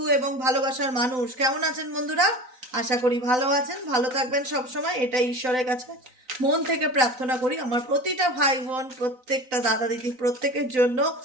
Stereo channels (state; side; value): late; left; 3.9 ms